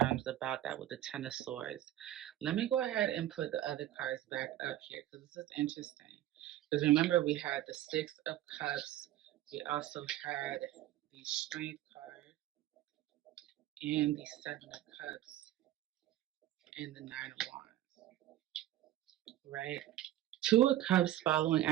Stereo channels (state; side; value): quieter; left; 13.5 dB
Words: about that with the Ten of Swords. Let me go ahead and put the other cards back up here because this is interesting. Because remember, we had the Six of Cups, we also had the Strength card, and the Seven of Cups, and the Nine of Wands, right? Two of Cups following